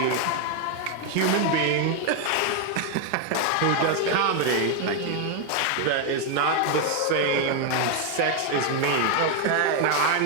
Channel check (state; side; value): different; both; correlation 0.01